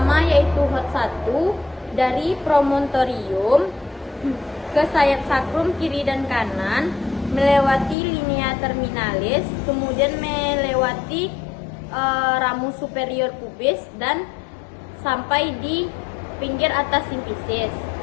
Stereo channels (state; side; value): drops out; right; at 8.0 s